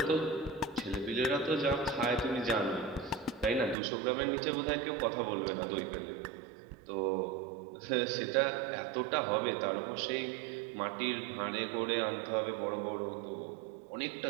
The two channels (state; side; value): drops out; left; at 3.8 s